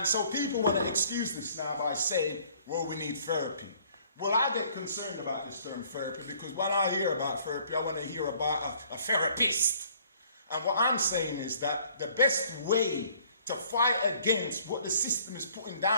so people want to excuse this now by saying, well, we need therapy. Well, I get concerned about this term therapy because when I hear about therapy, I want to hear about a therapist. And what I'm saying is that the best way to fight against what the system is putting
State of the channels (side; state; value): both; inverted; correlation -0.58